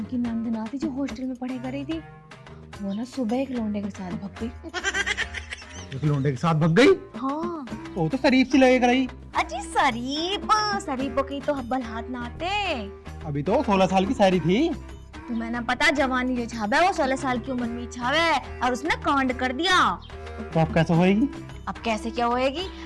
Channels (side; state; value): both; identical; correlation 1.00